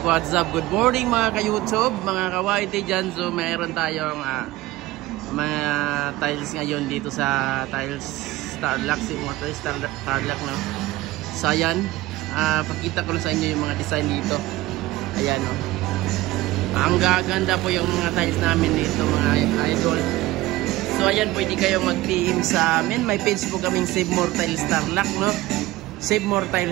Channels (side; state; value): left; quieter; 17.8 dB